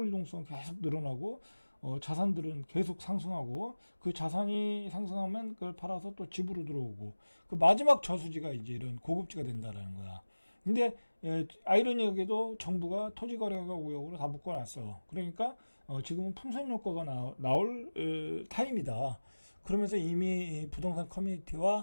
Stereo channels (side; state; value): both; inverted; correlation -1.00